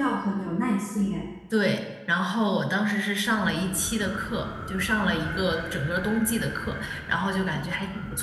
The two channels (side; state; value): both; identical; correlation 1.00